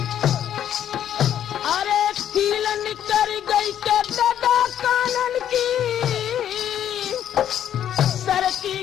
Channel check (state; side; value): quieter; right; 10.2 dB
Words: अरे कीलन कर गई के दादा कानन की सर की